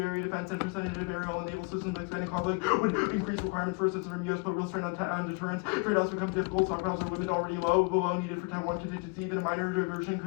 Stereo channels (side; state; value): right; quieter; 32.3 dB